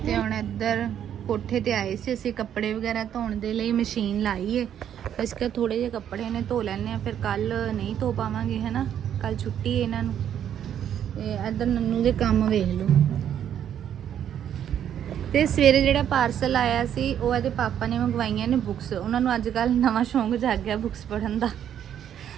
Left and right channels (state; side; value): quieter; left; 9.7 dB